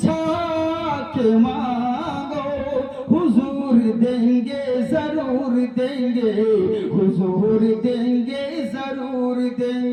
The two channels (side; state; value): both; identical; correlation 1.00